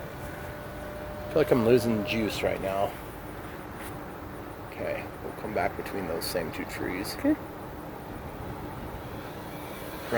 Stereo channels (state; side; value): identical; both; correlation 1.00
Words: I feel like I'm losing juice right now. Okay, we'll come back between those same two trees. Okay.